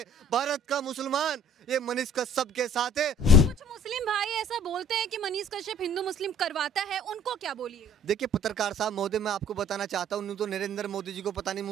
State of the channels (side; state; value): both; normal; correlation 0.53